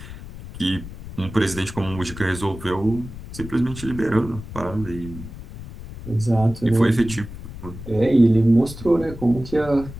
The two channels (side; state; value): left; noise; rumble, 13 dB below the sound